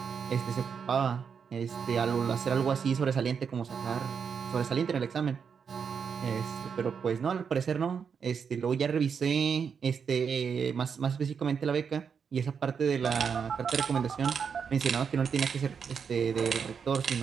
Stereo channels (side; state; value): left; quieter; 6.5 dB